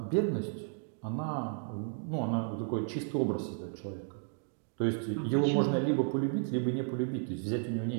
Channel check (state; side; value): silent; left; digital silence